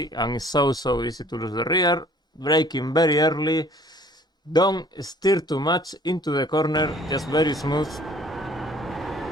and it's so easy to lose the rear. Braking very early. Don't steer too much into the corner, just very smooth.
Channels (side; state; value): both; normal; correlation 0.54